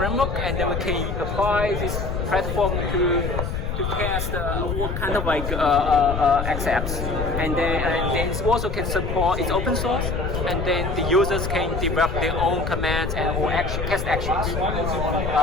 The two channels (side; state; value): left; noise; rumble, 3 dB below the sound